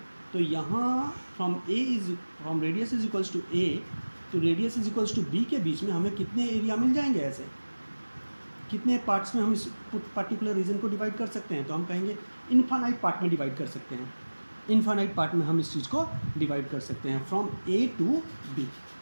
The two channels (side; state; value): both; inverted; correlation -1.00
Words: तो यहाँ from radius is equals to A to radius is equals to B के बीच में हमें कितने एरिया मिल जाएंगे ऐसे, कितने पार्ट्स में हम इस पर्टिकुलर रीजन को डिवाइड कर सकते हैं, तो हम कहेंगे इन्फानाइट पार्ट में डिवाइड कर सकते हैं। इन्फानाइट पार्ट में हम इस चीज़ को डिवाइड कर सकते हैं from A to B.